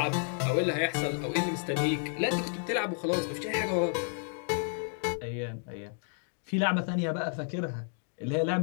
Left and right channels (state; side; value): silent; right; 57 dB below the other